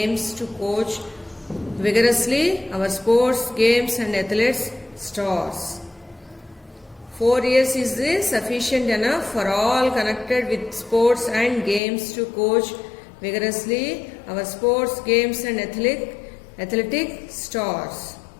to coach vigorously our sports, games and athletes stars. 4 years is sufficient enough for all connected with sports and games to coach vigorously our sports, games and athletic stars.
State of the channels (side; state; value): right; drops out; at 11.8 s